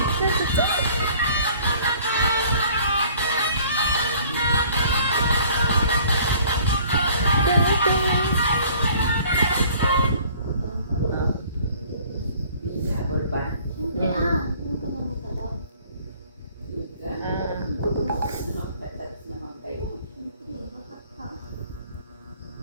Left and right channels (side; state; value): both; inverted; correlation -0.54